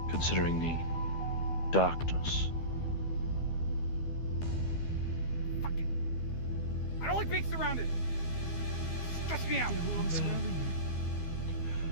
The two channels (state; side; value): late; right; 12 ms